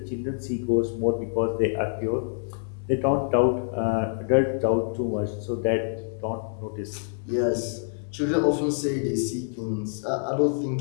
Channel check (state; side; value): silent; right; digital silence